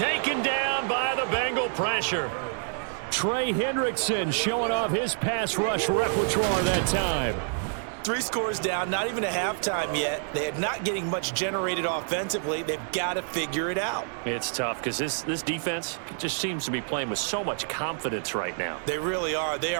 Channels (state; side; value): silent; left; 60 dB below the other